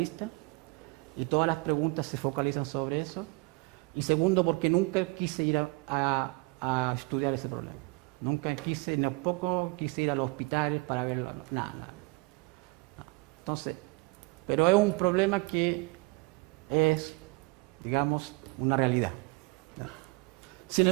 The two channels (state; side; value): quieter; left; 28.0 dB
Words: y todas las preguntas se focalizan sobre eso. Y segundo, porque nunca quise ir a estudiar ese problema. Nunca quise, tampoco quise ir a los hospitales para verlo, nada. Entonces, pero es un problema que es, digamos, una realidad. Sin